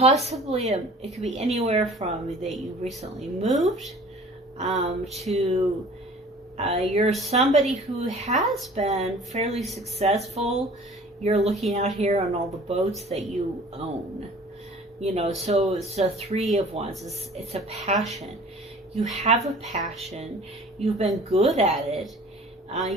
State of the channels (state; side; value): normal; both; correlation 0.47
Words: it could be anywhere from that you recently moved to you're somebody who has been fairly successful. You're looking out here on all the boats that you own. So it's a 3 of Wands. It's a passion. You have a passion. You've been good at it.